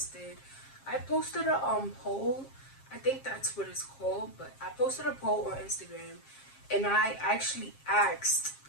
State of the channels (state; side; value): late; right; 7.5 ms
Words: I posted a poll. I think that's what it's called, but I posted a poll on Instagram, and I actually asked